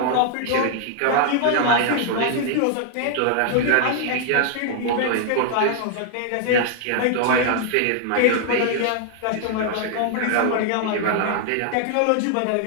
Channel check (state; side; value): different; both; correlation 0.00